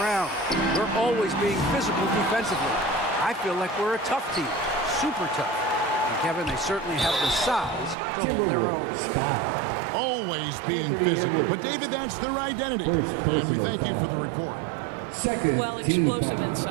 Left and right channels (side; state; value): left; drops out; at 8.0 s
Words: We're always being physical defensively. I feel like we're a tough team, super tough." And Kevin, they certainly have the size to hold their own. Always being physical. But, David, that's their identity. And we thank you for the report. Second, well, explosive